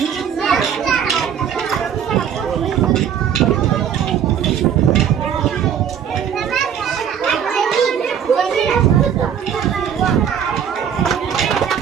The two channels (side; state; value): left; quieter; 8.5 dB